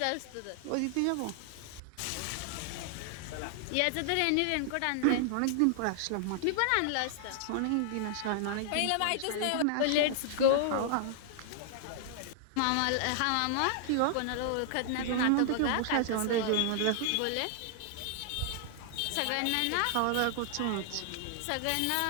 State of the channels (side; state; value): both; different; correlation -0.01